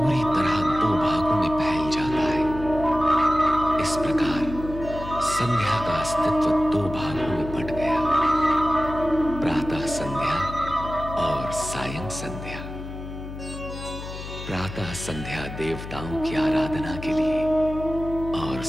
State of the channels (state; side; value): noise; left; hum, 10 dB below the sound